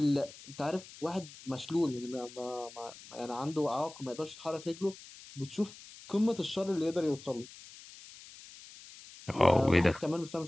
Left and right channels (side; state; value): left; noise; hiss, 18 dB below the sound